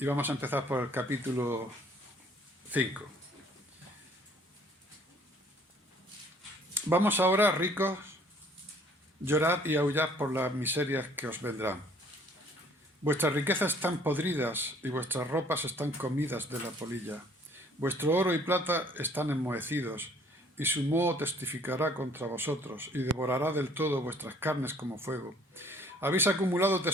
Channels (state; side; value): normal; both; correlation 0.58